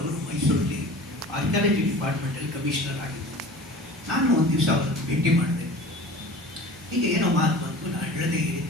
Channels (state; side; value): normal; both; correlation 0.40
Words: ಅವರು ಮೈಸೂರಲ್ಲಿ ಆರ್ಕಿಯಾಲಜಿ ಡಿಪಾರ್ಟ್ಮೆಂಟಲ್ಲಿ ಕಮಿಷನರ್ ಆಗಿದ್ದೆ. ನಾನು ಒಂದು ದಿವಸ ಅವರನ್ನು ಭೇಟಿ ಮಾಡಿದೆ. ಹೀಗೆ ಏನೋ ಮಾತು ಬಂತು, ನಾನು ಹೇಳದೆ